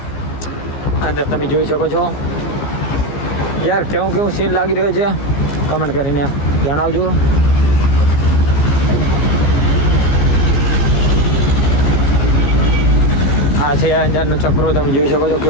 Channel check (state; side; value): late; right; 14 ms